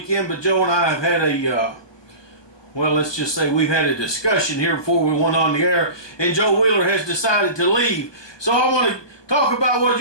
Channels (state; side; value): late; right; 1.2 ms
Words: but Joe and I have had a, well, let's just say we've had a discussion here before we went on the air, and Joe Wheeler has decided to leave. So I want to talk about what